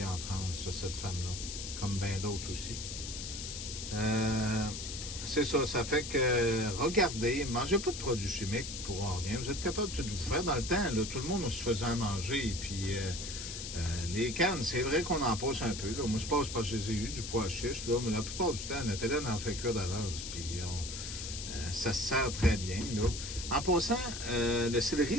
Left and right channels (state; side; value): noise; left; hiss, 7 dB below the sound